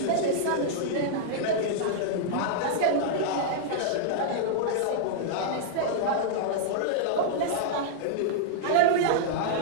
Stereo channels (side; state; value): both; different; correlation -0.02